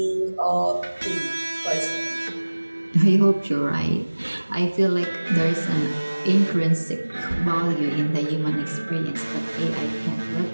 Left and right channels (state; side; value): inverted; both; correlation -1.00